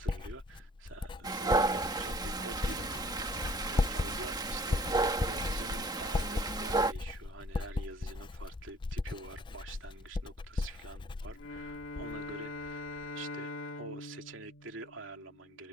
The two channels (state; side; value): normal; both; correlation 0.55